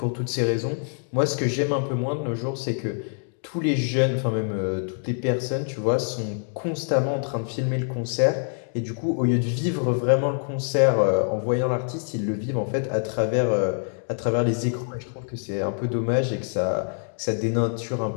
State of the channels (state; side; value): silent; right; 62 dB below the other